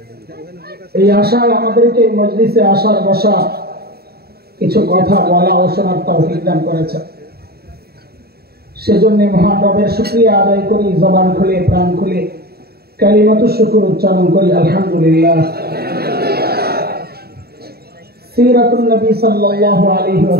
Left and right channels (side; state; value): left; late; 0.46 ms